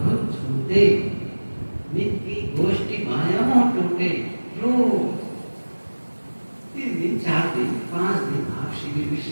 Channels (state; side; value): inverted; both; correlation -1.00